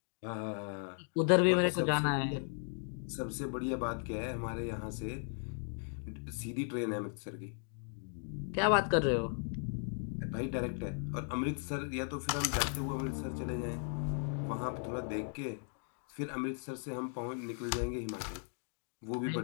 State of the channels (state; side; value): silent; right; 53 dB below the other